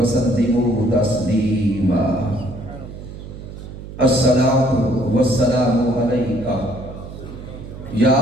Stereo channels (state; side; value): noise; right; hum, 12 dB below the sound